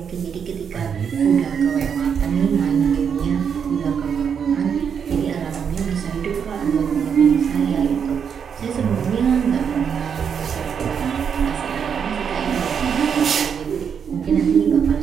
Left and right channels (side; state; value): left; quieter; 7.2 dB